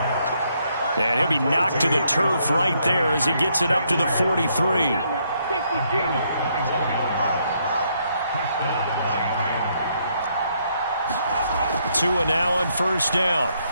And he'll be knocked to the turf right there as he gets it up to the 43. Tua now on first down.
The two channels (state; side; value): inverted; both; correlation -0.73